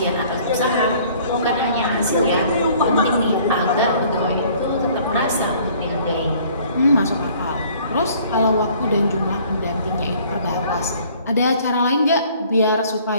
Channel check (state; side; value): inverted; both; correlation -0.56